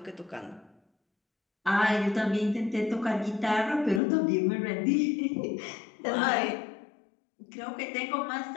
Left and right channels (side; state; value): right; drops out; at 4.0 s